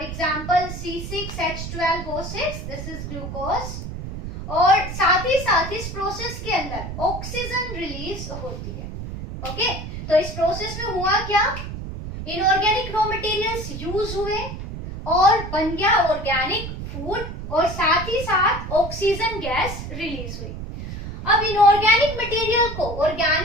example C6H12O6, this is glucose. और साथ ही इस प्रोसेस के अंदर ऑक्सीजन रिलीज होती है। ओके, तो इस प्रोसेस में हुआ क्या? इनऑर्गेनिक रॉ मटेरियल्स यूज हुए और बन गया ऑर्गेनिक फूड और साथ ही साथ ऑक्सीजन गैस रिलीज हुई। अब इनऑर्गेनिक मटेरियल को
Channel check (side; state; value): right; noise; rumble, 8 dB below the sound